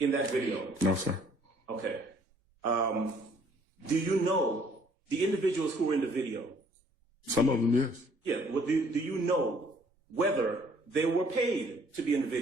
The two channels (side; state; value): left; late; 1.7 ms